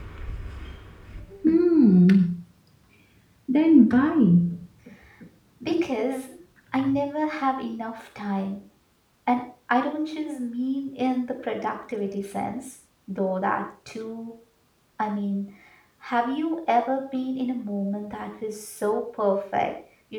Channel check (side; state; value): both; identical; correlation 1.00